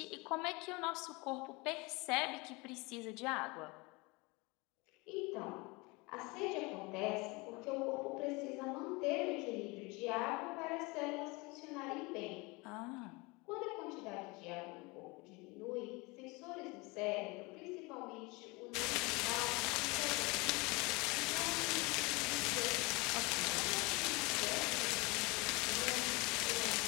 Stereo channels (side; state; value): right; quieter; 25.8 dB